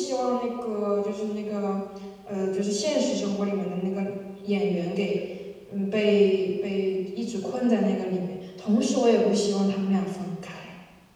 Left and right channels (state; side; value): identical; both; correlation 1.00